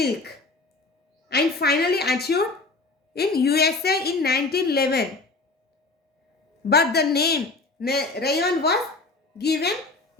and finally achieved in USA in 1911. But the name rayon was given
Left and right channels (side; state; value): right; quieter; 3.5 dB